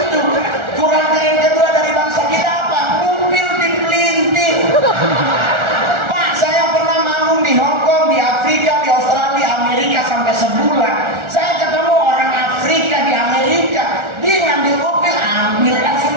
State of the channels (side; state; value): left; late; 1.4 ms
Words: Kurang keren kedua dari bangsa kita apa? Mobil dipelintir. Pak, saya pernah manggung di Hong Kong, di Afrika, di Australia, Amerika sampai sebulan. Saya ketemu orang Afrika di Amerika, dia ngambil mobil, ambil